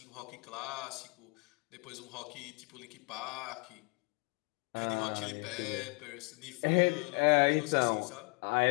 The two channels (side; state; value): right; quieter; 32.5 dB